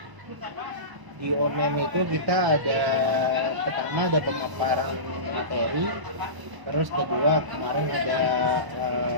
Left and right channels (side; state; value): left; late; 1.0 ms